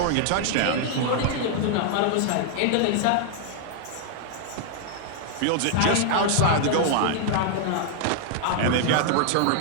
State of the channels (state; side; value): different; both; correlation 0.00